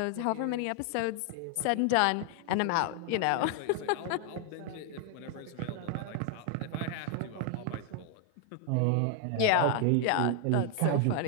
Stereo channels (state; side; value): different; both; correlation 0.00